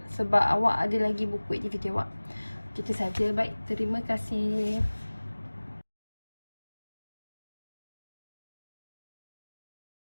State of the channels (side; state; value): both; inverted; correlation -1.00